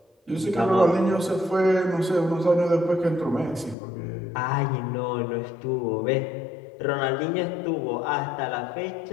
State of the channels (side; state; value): right; drops out; at 3.8 s